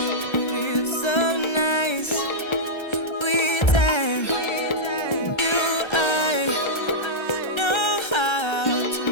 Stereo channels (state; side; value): late; right; 1.3 ms